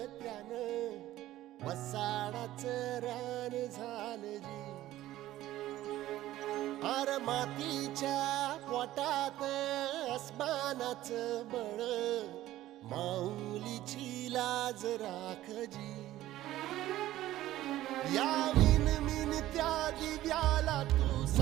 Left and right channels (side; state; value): left; quieter; 14.7 dB